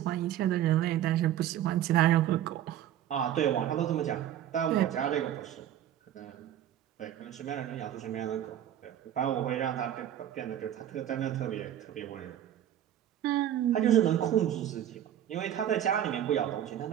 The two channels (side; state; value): left; quieter; 11.2 dB